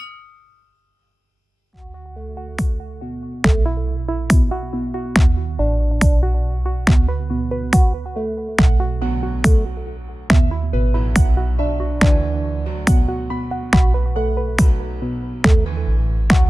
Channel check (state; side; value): normal; both; correlation 0.96